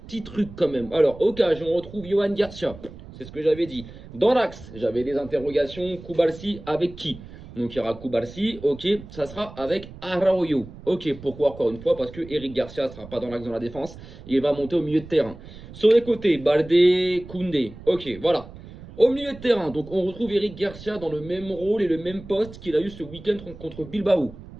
trucs quand même. Alors, au cas, on retrouve Yohan Garcia, c'est ce que j'avais dit. Dans l'axe, j'avais des interrogations, Koubalsi avec qui? Donc il y aura Koubalsi, ok, ça sera avec Araujo. Ok, pourquoi encore une fois? Parce que Eric Garcia ne sera pas dans l'axe dans la défense, il va monter au milieu de terrain. Sur les côtés, Baldé, Koundé, ok, voilà. Au milieu de terrain, donc on retrouve Eric Garcia dans le même rôle et le même poste qu'il a eu ce week-end contre Bilbao.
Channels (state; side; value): noise; right; rumble, 16 dB below the sound